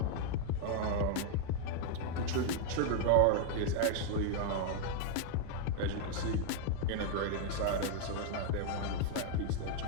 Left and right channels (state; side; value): different; both; correlation 0.00